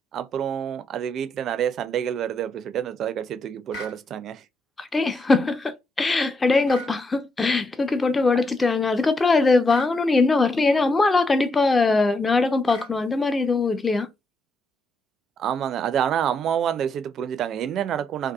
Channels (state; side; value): normal; both; correlation 0.78